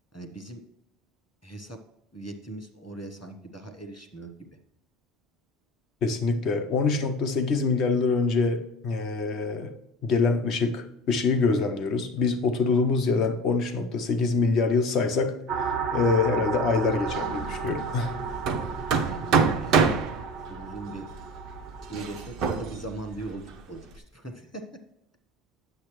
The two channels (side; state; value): both; normal; correlation 0.35